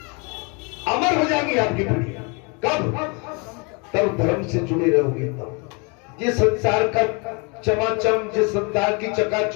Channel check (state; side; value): quieter; right; 32.2 dB